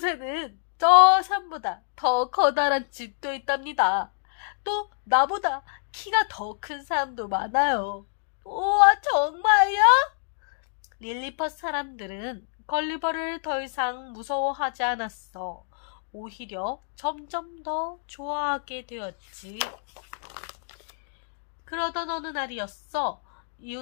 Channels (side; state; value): right; silent; digital silence